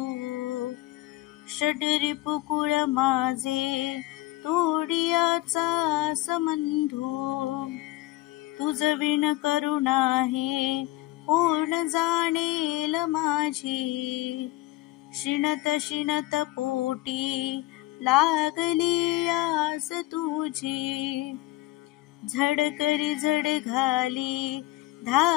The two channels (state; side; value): quieter; right; 18.0 dB